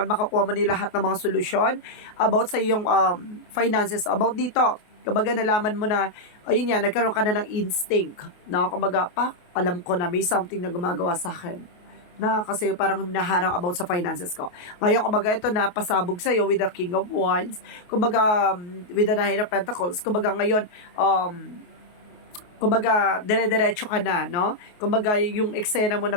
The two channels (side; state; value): right; late; 28 ms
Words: Makakuha mo ni lahat ng mga solusyon about sa iyong finances. About dito, kumbaga nalaman mo na, ayun yan, nagkaroon ka na ng instinct. Na kumbaga, alam ko na may something na gumagawa sa akin na kasi parang hinaharang about sa finances ko. Ngayon, kumbaga, ito na pasabog sa'yo with the King of Wands. Kumbaga, with the Nine of Pentacles. Kumbaga, ngayon, kumbaga, dire-diretso ka na, no? Kumbaga, yung eksena mo